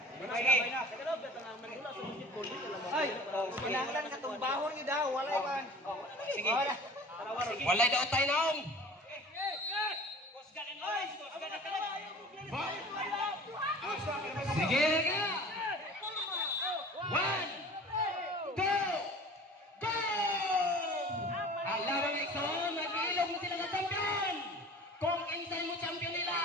Sige. Ay, kinahanglan ka itong bahon niyo daw. Walay ba? Sige. Walay daw tayo naong. Sige na. 1, 2, go! Alam mo ito, nag-iilog mo sila ng champion. Kung insay mo champion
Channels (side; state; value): both; normal; correlation 0.43